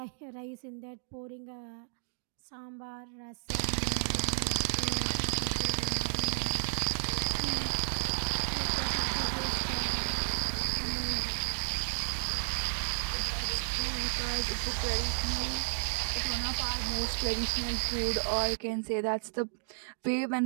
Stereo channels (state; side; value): silent; left; digital silence